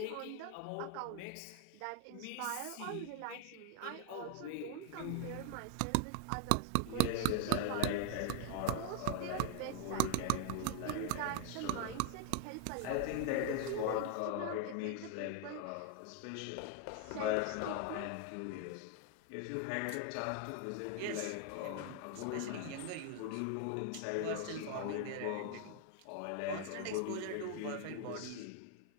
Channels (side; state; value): both; different; correlation 0.00